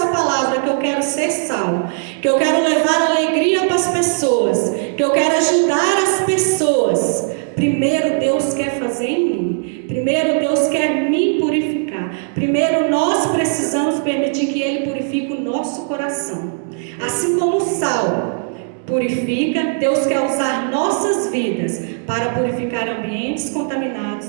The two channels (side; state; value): left; silent; 65 dB below the other